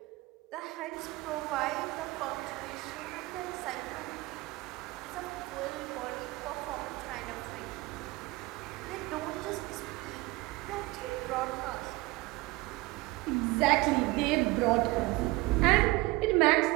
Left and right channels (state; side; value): quieter; left; 21.5 dB